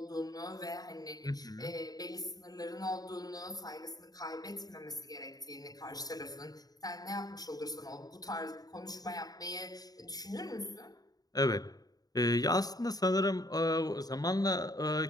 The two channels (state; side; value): late; right; 0.18 ms